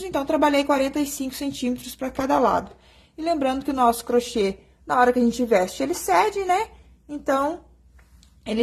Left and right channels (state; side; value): identical; both; correlation 1.00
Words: então trabalhei 45 centímetros para cada lado. E lembrando que o nosso crochê, na hora que a gente veste, ele cede, né? Então,